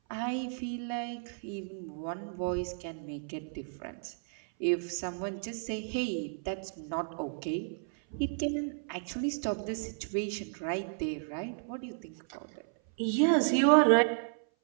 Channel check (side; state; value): left; silent; 56 dB below the other